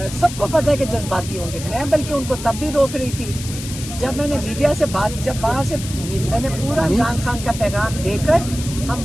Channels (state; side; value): noise; left; hiss, 11 dB below the sound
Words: سب کو پتہ ہے کہ جذباتی ہوں گے. میں بلکہ ان کو تب بھی روک رہی تھی جب میں نے میڈیا سے جب وہاں سے میں نے پورا عمران خان کا پیغام دے کر ہم